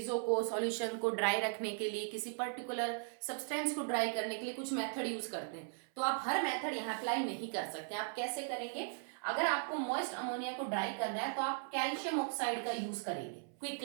को, सॉल्यूशन को ड्राई रखने के लिए, किसी पर्टिकुलर सब्सटेंस को ड्राई करने के लिए कुछ मेथड यूज करते हैं। तो आप हर मेथड यहाँ अप्लाई नहीं कर सकते। आप कैसे करेंगे, अगर आपको मॉइस्ट अमोनिया को ड्राई करना है तो आप कैल्शियम ऑक्साइड का यूज करेंगे, क्विक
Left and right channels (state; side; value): silent; left; 52 dB below the other